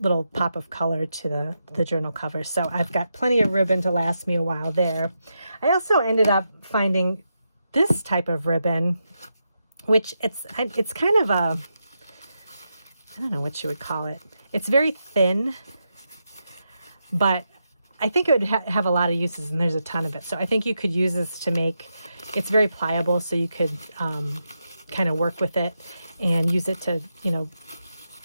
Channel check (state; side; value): inverted; both; correlation -0.85